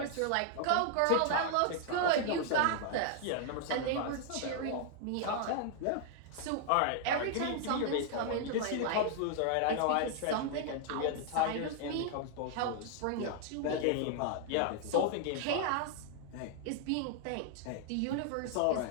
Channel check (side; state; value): both; different; correlation 0.00